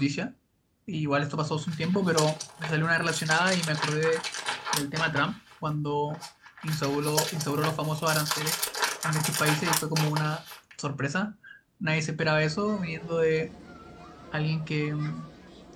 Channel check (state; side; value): identical; both; correlation 1.00